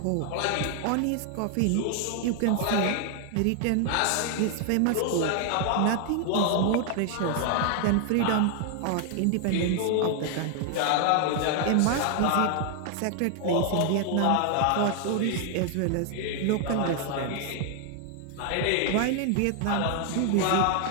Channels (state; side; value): different; both; correlation 0.00